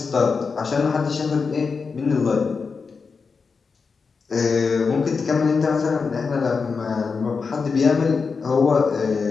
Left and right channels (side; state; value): right; quieter; 5.0 dB